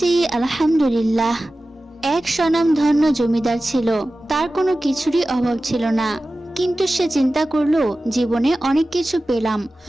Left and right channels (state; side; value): normal; both; correlation 0.95